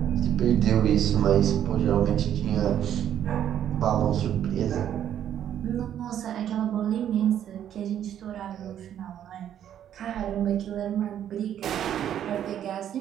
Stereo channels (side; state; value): left; quieter; 10.3 dB